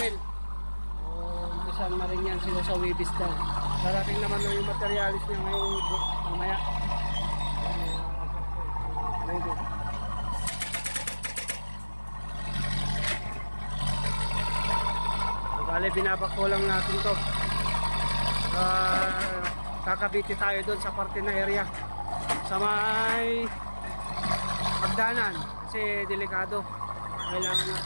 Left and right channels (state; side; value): inverted; both; correlation -1.00